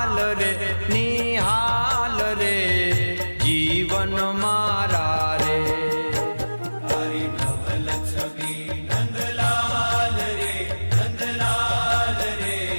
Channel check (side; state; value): both; inverted; correlation -1.00